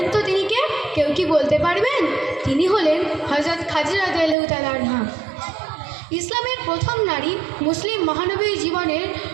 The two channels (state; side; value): drops out; left; at 4.4 s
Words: তো তিনি কে? কেউ কি বলতে পারবেন? তিনি হলেন হযরত খাদিজা রাদিয়াল্লাহু তাআলা আনহা। ইসলামের প্রথম নারী, মুসলিম মহানবীর জীবনের